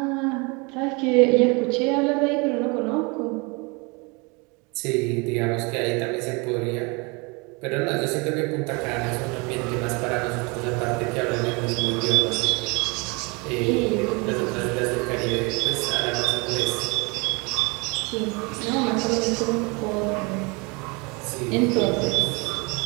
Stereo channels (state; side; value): quieter; left; 29.1 dB